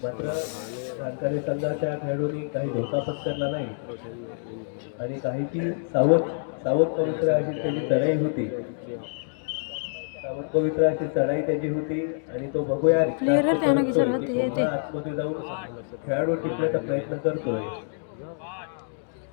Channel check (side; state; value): right; silent; digital silence